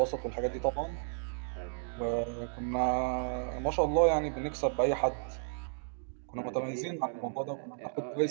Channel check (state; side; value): silent; left; digital silence